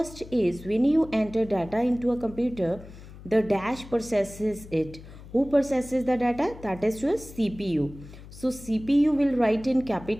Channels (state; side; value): noise; left; hum, 17 dB below the sound